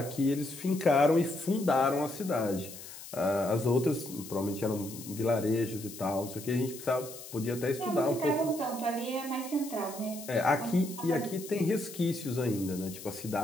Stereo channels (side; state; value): left; noise; hiss, 14 dB below the sound